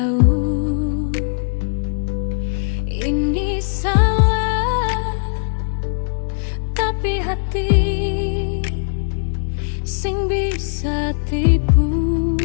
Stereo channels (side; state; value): right; silent; digital silence